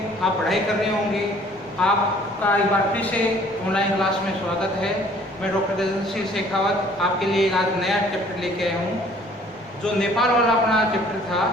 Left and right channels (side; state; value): both; normal; correlation 0.56